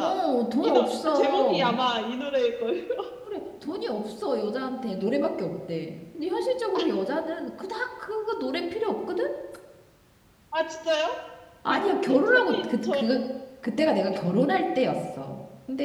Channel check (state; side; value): identical; both; correlation 1.00